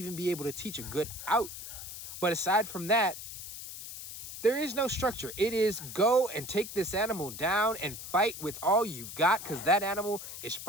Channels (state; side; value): noise; left; hiss, 10 dB below the sound